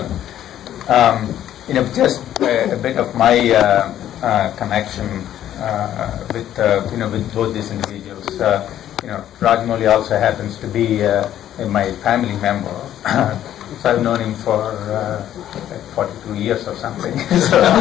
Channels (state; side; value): quieter; right; 11.6 dB